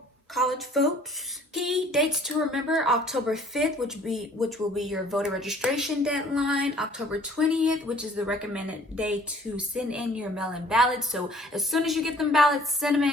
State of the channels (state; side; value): normal; both; correlation 0.55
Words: college votes. Key dates to remember: October 5th, which will be your voter registration deadline. October 20th, which is the recommended day to send in your mail-in ballots. So as soon as you get them ballots, send them